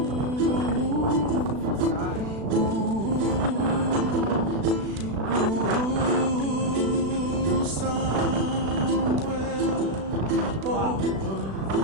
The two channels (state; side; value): late; left; 36 ms